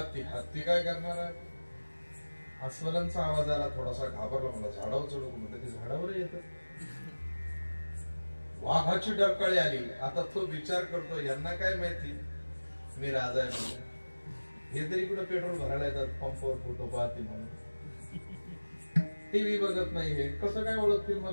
हत्ती काय करणार आहे? अस्वलांचा आवाज आला, थोडासा घाबरला. मला झाडावर चढू म्हटलं, ते झाडावर येत. वाघाची डरकाळी आली. आता तो विचार करतो, यांना काय माहिती मी राजा आहे. हे तरी कुठं पेट्रोल भरायला येतात, पंपावर फोटो पाहतील म्हणून. टीव्ही बघत नाही, हे कसं काय ओळखतील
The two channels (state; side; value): inverted; both; correlation -1.00